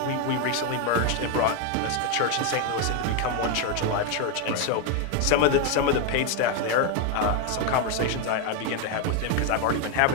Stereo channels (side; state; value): both; different; correlation 0.01